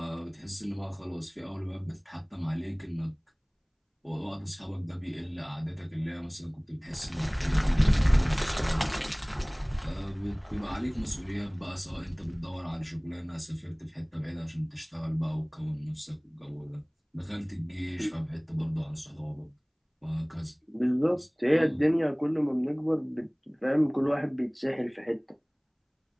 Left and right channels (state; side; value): identical; both; correlation 1.00